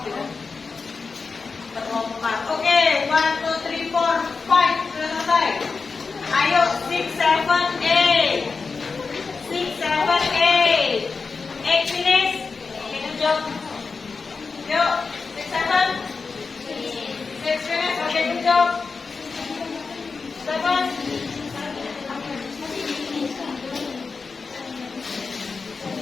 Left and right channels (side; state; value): right; quieter; 4.6 dB